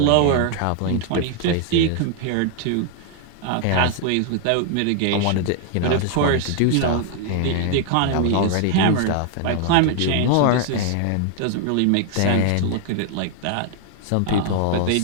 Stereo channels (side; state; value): both; different; correlation 0.00